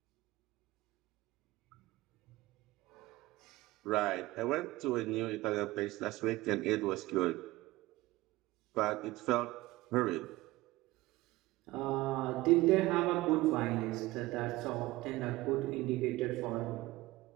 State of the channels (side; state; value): left; quieter; 19.2 dB